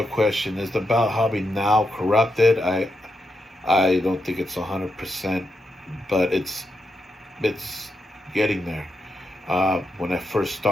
question is, the belt hobby now corrupted? I don't think it's 100%, but it's getting there. When I first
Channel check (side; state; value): both; normal; correlation 0.84